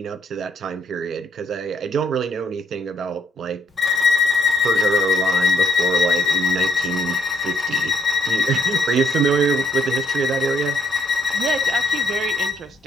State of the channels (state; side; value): normal; both; correlation 0.70